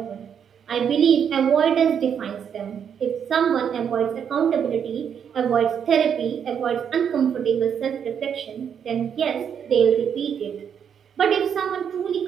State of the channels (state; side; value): quieter; left; 7.9 dB